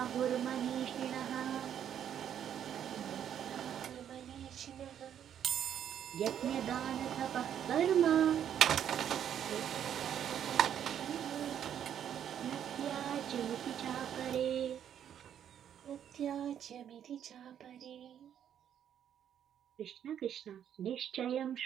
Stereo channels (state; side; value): quieter; left; 9.5 dB